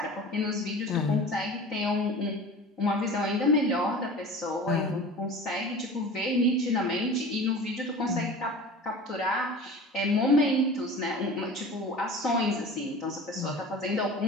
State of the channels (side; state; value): both; normal; correlation 0.37